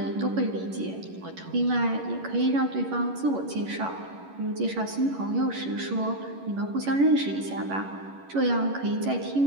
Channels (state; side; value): late; left; 11 ms